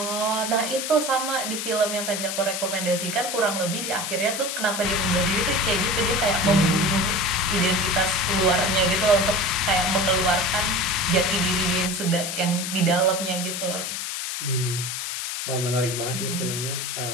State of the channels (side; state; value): left; noise; hiss, 4 dB below the sound